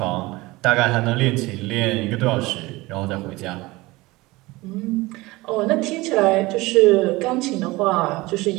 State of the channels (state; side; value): quieter; left; 21.0 dB